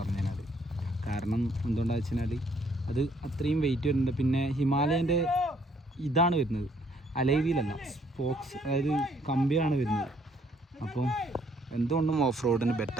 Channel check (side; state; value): both; normal; correlation 0.66